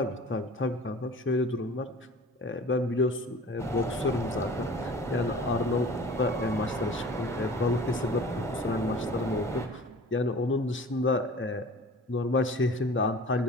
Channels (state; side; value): normal; both; correlation 0.42